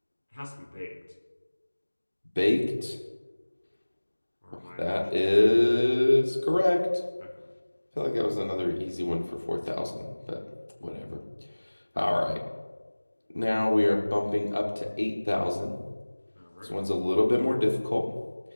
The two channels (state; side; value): inverted; both; correlation -1.00